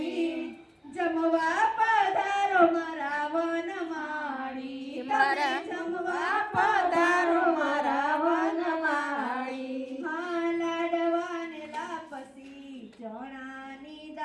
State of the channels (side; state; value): both; identical; correlation 1.00